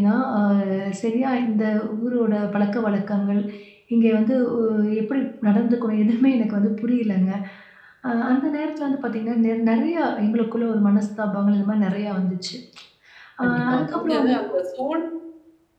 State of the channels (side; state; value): both; identical; correlation 1.00